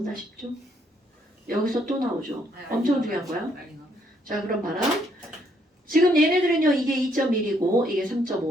싶죠? 여기서 또 나오죠? 엄청 중요한 거야. 자, 그럼 봐라. 지금 얘네들은요, 이게 2.1이고 이게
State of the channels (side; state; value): both; normal; correlation 0.71